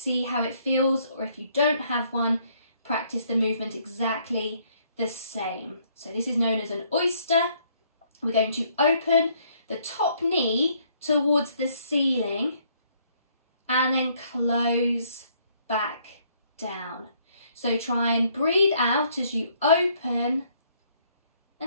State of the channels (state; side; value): inverted; both; correlation -0.66